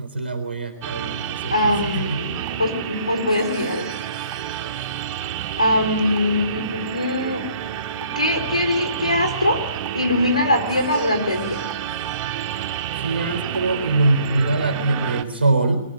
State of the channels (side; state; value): both; inverted; correlation -0.61